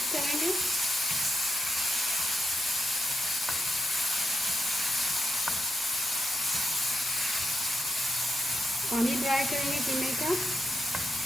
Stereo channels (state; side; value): normal; both; correlation 0.84